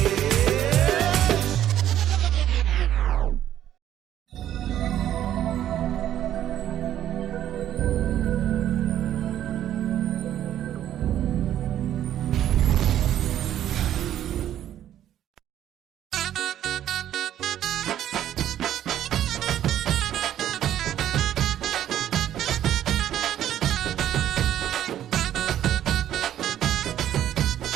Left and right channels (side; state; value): left; quieter; 11.4 dB